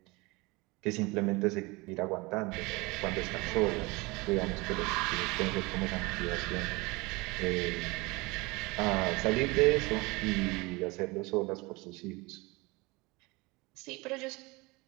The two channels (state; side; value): quieter; left; 24.6 dB